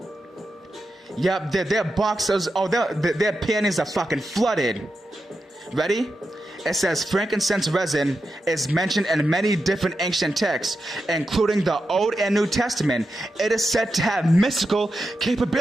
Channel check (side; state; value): both; normal; correlation 0.88